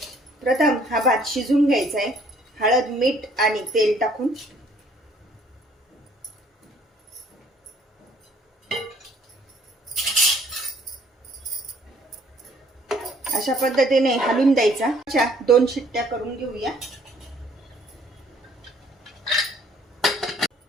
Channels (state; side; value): normal; both; correlation 0.61